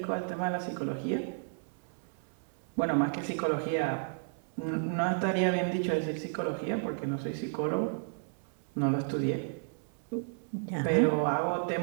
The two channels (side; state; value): left; silent; 56 dB below the other